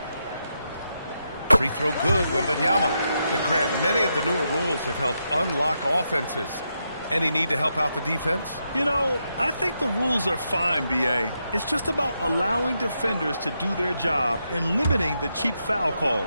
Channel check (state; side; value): inverted; both; correlation -0.83